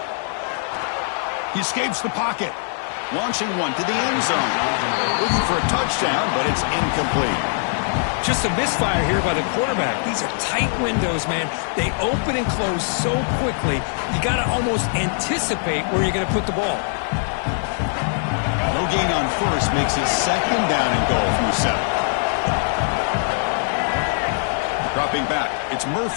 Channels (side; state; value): right; silent; digital silence